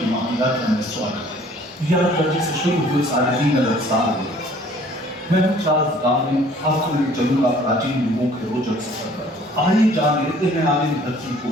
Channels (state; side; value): normal; both; correlation 0.55